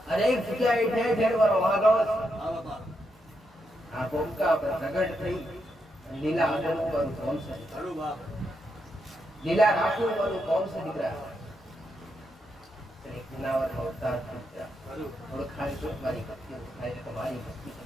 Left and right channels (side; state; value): both; normal; correlation 0.82